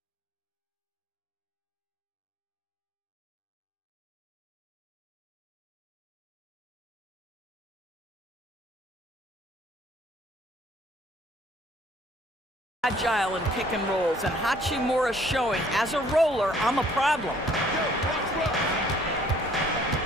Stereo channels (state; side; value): normal; both; correlation 0.60